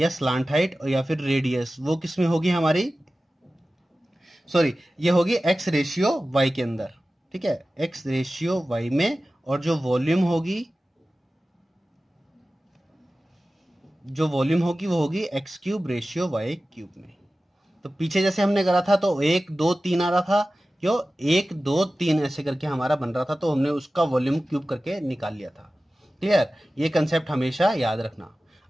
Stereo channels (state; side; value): normal; both; correlation 0.95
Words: स्लांट हाइट और या फिर रेडियस, वो किस में होगी हमारी? सॉरी, ये होगी x रेशियो y के अंदर। ठीक है, x रेशियो y में, और जो वॉल्यूम होगी वो होगी x³ रेशियो y³ में। तो पीछे जैसे हमने करा था, तो 1 2 3 आ रहा था। क्यों? 1 2 3 ऐसे करके हमारा बन रहा था, तो हमने उसका वॉल्यूम क्यूब करके निकाल लिया था। क्लियर? ये कंसेप्ट हमेशा याद रखना।